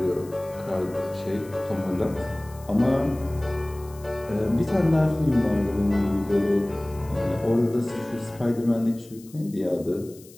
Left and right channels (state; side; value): noise; left; hiss, 23 dB below the sound